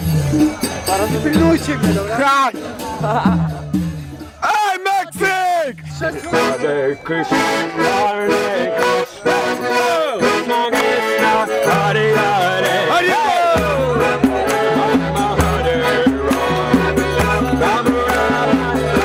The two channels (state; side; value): identical; both; correlation 1.00